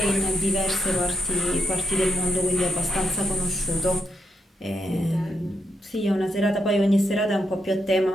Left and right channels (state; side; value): normal; both; correlation 0.81